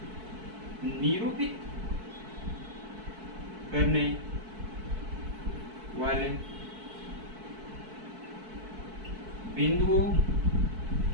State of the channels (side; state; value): left; late; 4.6 ms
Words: निरूपित करने वाले बिंदुओं